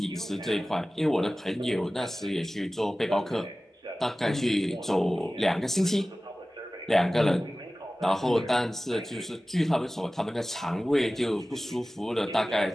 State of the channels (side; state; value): both; normal; correlation 0.97